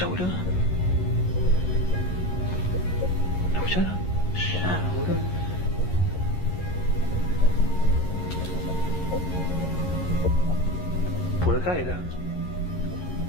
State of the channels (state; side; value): late; right; 11 ms